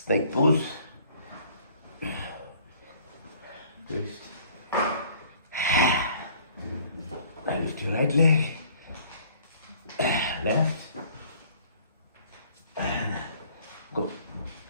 pose, twist, lift your right leg, left, and go,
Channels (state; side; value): inverted; both; correlation -0.55